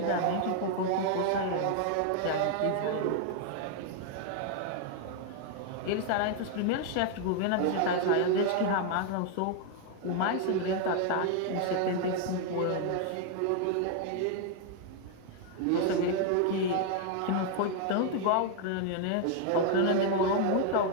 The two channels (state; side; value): different; both; correlation 0.00